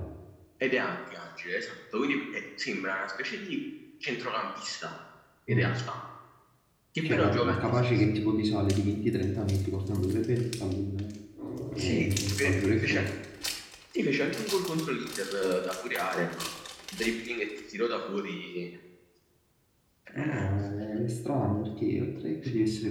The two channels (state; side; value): identical; both; correlation 1.00